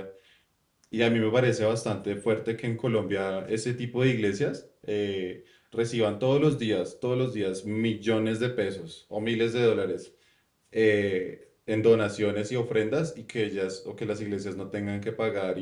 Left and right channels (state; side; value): identical; both; correlation 1.00